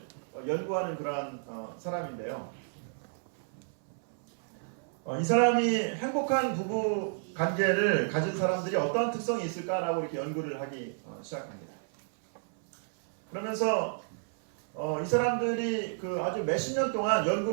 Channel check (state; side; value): silent; left; 57 dB below the other